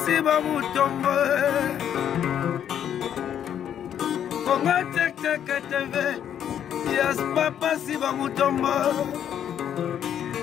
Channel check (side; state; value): right; quieter; 9.6 dB